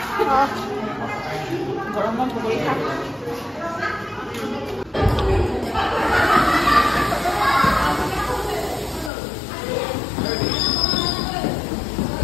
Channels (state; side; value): drops out; right; at 9.1 s